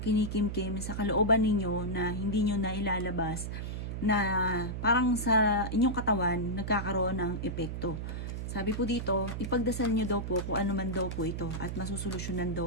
sa kalooban ninyo na hindi nyo na ilalabas na parang sa inyong katawan nagkakaroon ng epekto. Sabi po dito, ipagdasal nyo daw po kung ano man daw po ito at masusolusyonan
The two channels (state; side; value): noise; right; hum, 5 dB below the sound